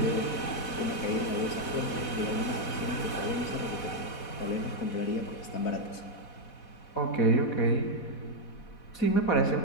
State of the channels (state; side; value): late; right; 4.1 ms